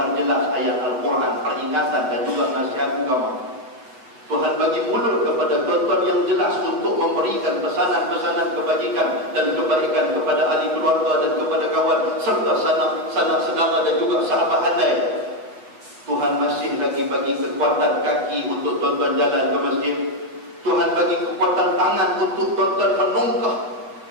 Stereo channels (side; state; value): left; late; 7.9 ms